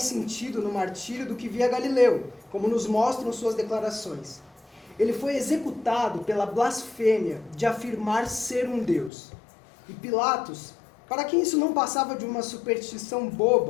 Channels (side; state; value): right; drops out; at 9.1 s